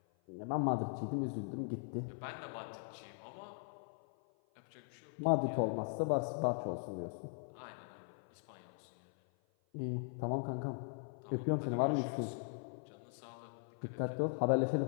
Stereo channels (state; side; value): silent; right; 51 dB below the other